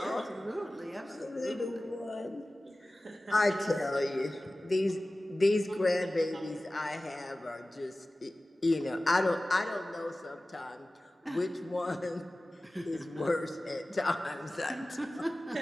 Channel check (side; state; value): both; normal; correlation 0.97